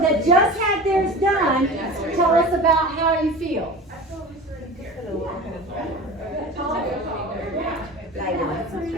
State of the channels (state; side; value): normal; both; correlation 0.34